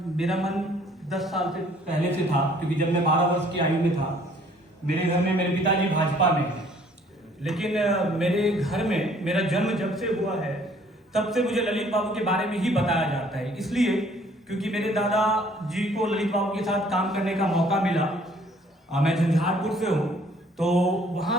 मेरा मन 10 साल से पहले से था, क्योंकि जब मैं 12 वर्ष की आयु में था, मेरे घर में मेरे पिताजी भाजपा में हैं, लेकिन मेरे घर में मेरा जन्म जब से हुआ है तब से मुझे ललित बाबू के बारे में ही बताया जाता है। इसलिए क्योंकि मेरे दादा जी को ललित बाबू के साथ काम करने का मौका मिला। मैं झंझारपुर से हूँ, तो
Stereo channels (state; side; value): normal; both; correlation 0.59